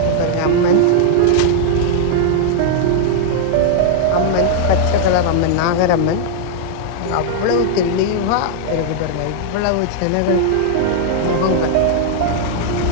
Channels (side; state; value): both; different; correlation -0.01